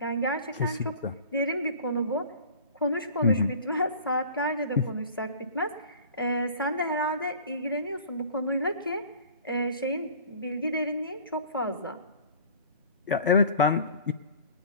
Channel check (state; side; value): inverted; both; correlation -0.44